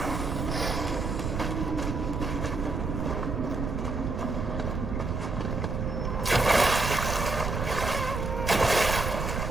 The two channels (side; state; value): right; noise; rumble, 2 dB below the sound